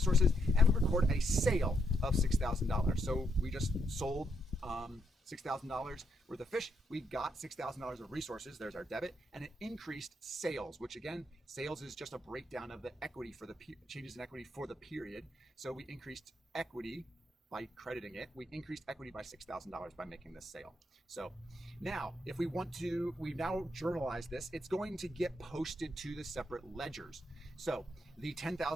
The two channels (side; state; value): both; normal; correlation 0.78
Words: and we record a sale of $6,000. So we just sold $6,000 worth of fish. We got $6,000 of resources. There's our debit, and it increased sales, which again, sales is just a breakdown of the equity for the changes in equity for the period. So we increased equity by crediting it. We increased equity by $6,000 by making this sale. So now, if we want to, we've now journalized this. It's going to get posted to the separate ledgers. So the